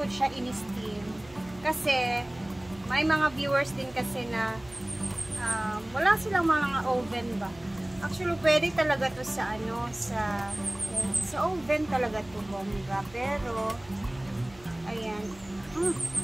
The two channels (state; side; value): noise; right; hum, 23 dB below the sound